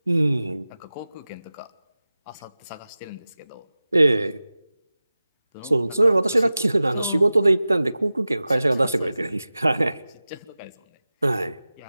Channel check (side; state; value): both; inverted; correlation -0.96